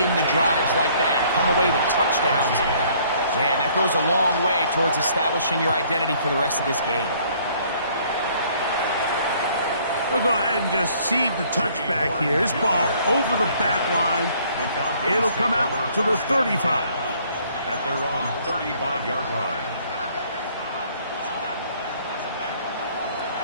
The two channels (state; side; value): inverted; both; correlation -0.60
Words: the drives like that and come away with touchdowns. Man, that goes a long way towards establishing your identity for the rest of this game. We'll go ahead and just seed the touchback here. This ball over the back line. It'll come out to the 35. At their own 35-yard line.